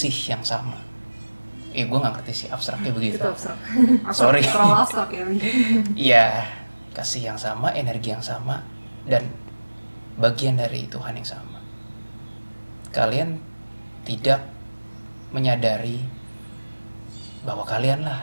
yang sama. Gue nggak ngerti sih abstraknya begitu. Itu abstrak. Sorry. Terlalu abstrak ya. Iya, kasih yang sama, energi yang sama, dan bagian dari Tuhan yang sama. Kalian tidak menyadari bahwa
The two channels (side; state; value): both; inverted; correlation -1.00